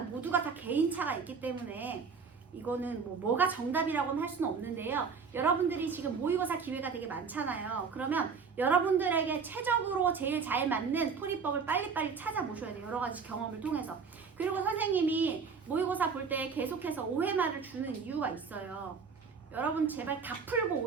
모두가 다 개인차가 있기 때문에 이거는 뭐가 정답이라고는 할 수는 없는데요. 여러분들이 지금 모의고사 기회가 되게 많잖아요. 그러면 여러분들에게 최적으로 제일 잘 맞는 풀이법을 빨리빨리 찾아보셔야 돼요. 여러 가지 경험을 통해서. 그리고 선생님이 모의고사 볼 때 계속해서 OMR을 주는 이유가 있어요. 여러분 제발 다 풀고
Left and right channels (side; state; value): left; quieter; 5.5 dB